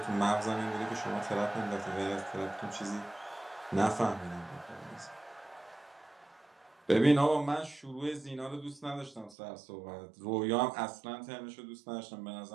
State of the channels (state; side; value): drops out; left; at 9.3 s